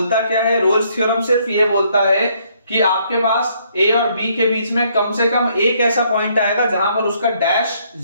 क्या है, रोल्स थ्योरम सिर्फ ये बोलता है कि आपके पास a और b के बीच में कम से कम एक ऐसा पॉइंट आएगा जहां पर उसका डैश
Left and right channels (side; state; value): both; inverted; correlation -0.69